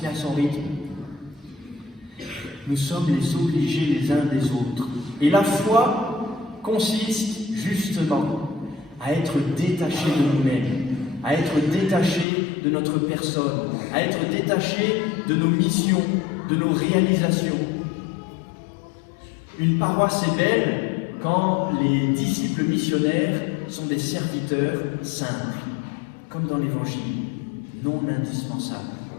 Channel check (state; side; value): drops out; right; at 12.2 s